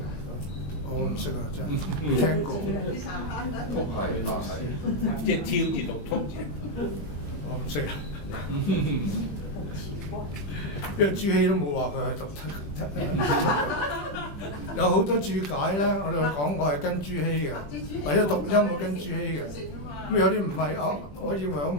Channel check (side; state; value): right; late; 20 ms